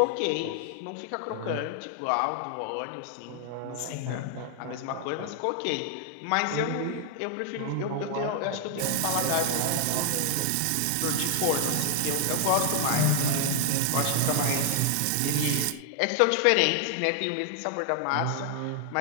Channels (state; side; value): different; both; correlation 0.00